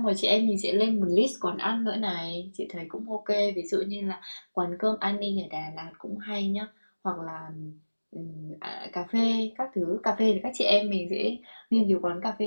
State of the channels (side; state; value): both; inverted; correlation -1.00